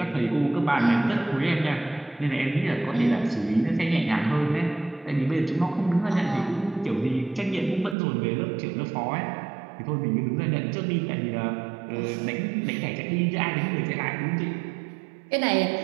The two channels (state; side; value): drops out; left; at 8.0 s